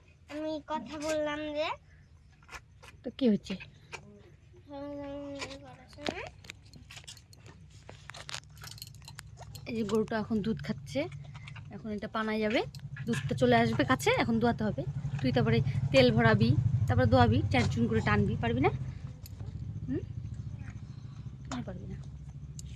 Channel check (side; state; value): both; identical; correlation 1.00